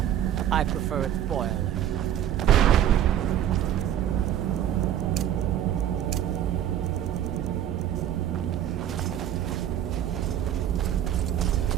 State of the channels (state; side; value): quieter; left; 10.7 dB